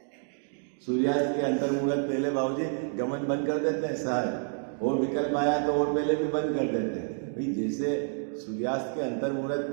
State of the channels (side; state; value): left; silent; 59 dB below the other